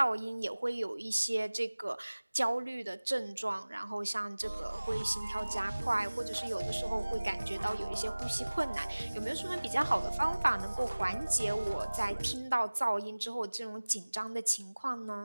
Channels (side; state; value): both; inverted; correlation -1.00